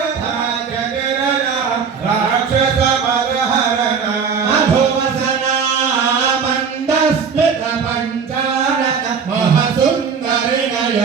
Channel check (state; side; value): quieter; left; 6.1 dB